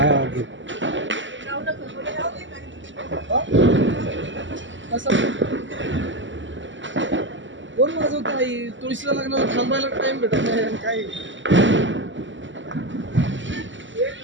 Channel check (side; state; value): left; late; 0.55 ms